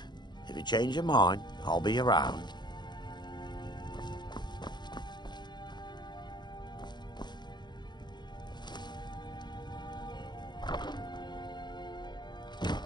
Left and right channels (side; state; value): right; late; 0.21 ms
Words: If you change your mind, I'll be around.